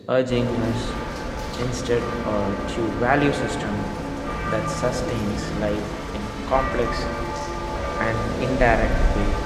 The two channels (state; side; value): identical; both; correlation 1.00